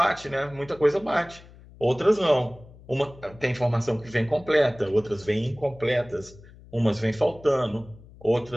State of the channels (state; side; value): noise; left; hum, 21 dB below the sound